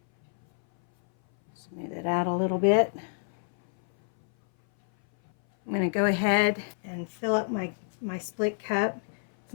Smooth it out a little bit. I'm going to go ahead and fill up my split cup. It's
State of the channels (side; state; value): right; silent; 58 dB below the other